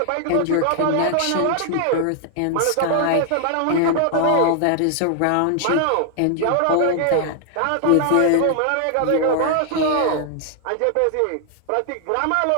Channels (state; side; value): different; both; correlation 0.00